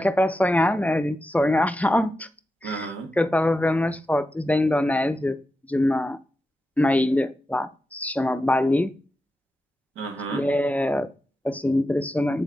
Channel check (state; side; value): normal; both; correlation 0.90